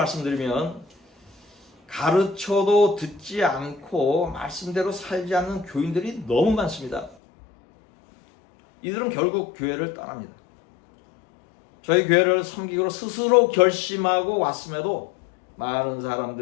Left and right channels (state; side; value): drops out; right; at 7.2 s